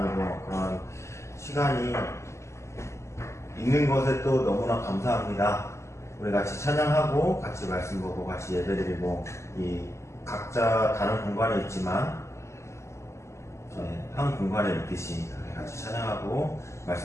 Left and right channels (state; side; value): late; right; 0.13 ms